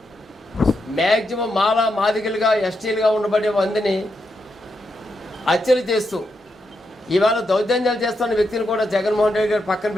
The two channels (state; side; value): normal; both; correlation 0.83